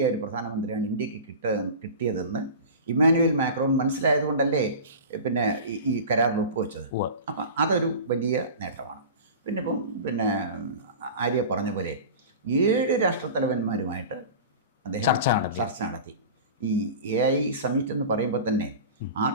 ഒരു പ്രധാനമന്ത്രിയാണ് ഇന്ത്യക്ക് കിട്ടിയതെന്ന് ഇമ്മാനുവൽ മാക്രോൺ മനസ്സിലായതുകൊണ്ടല്ലേ പിന്നെ ഈ കരാറിൽ ഒപ്പുവെച്ചത്. അപ്പം അതൊരു വലിയ നേട്ടമാണ്. പിന്നെ ആര്യ പറഞ്ഞ പോലെ 7 രാഷ്ട്രത്തലവന്മാരുമായിട്ട് അദ്ദേഹം ചർച്ച നടത്തി. ഈ AI സമ്മിറ്റ് എന്ന് പറയുമ്പോൾ തന്നെ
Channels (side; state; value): both; inverted; correlation -0.33